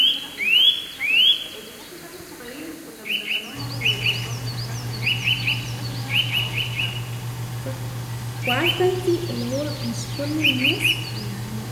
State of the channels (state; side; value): identical; both; correlation 1.00